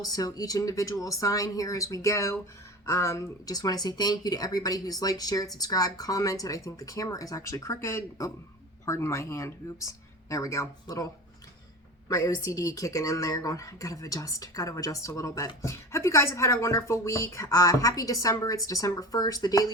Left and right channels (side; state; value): both; normal; correlation 0.32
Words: so each individual sign here as we go. Just want to say thank you to everybody who's liked, shared, subscribed, commented. I think the camera is actually crooked. Oh, pardon my hand. Oops. There we go. My OCD kicking in there, going, gotta adjust a little bit. Hope you guys have had a wonderful week. Happy December. It's December 1st, the